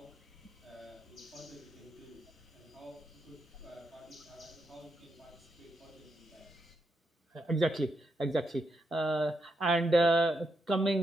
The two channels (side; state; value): both; normal; correlation 0.82